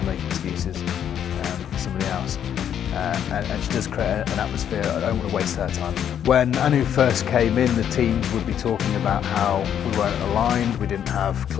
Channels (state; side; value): quieter; right; 9.3 dB